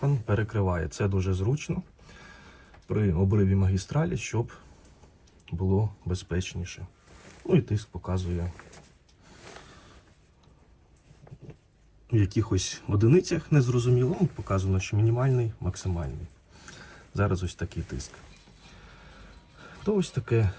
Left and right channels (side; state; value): both; identical; correlation 1.00